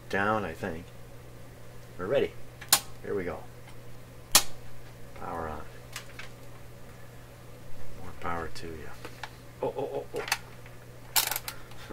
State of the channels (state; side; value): identical; both; correlation 1.00